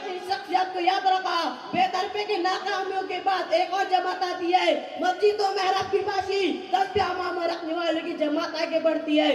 شخصیات کو یاد رکھا. بے طرفے کی ناکامیوں کے بعد ایک اور جماعت آتی ہے. مسجد و محراب کی باشی تسبیح امام رکھنے والوں کی جماعت آگے بڑھتی ہے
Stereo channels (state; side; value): identical; both; correlation 1.00